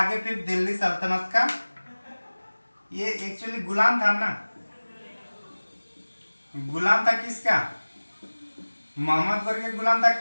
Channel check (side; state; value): both; inverted; correlation -1.00